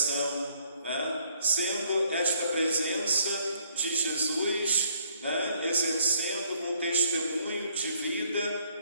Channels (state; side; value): inverted; both; correlation -0.66